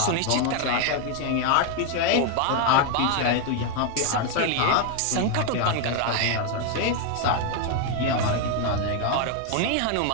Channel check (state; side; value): different; both; correlation 0.01